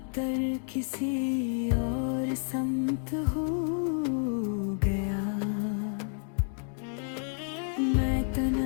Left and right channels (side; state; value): right; silent; 56 dB below the other